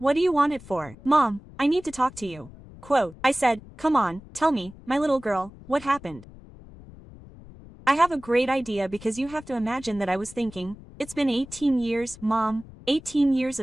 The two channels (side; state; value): left; noise; rumble, 19 dB below the sound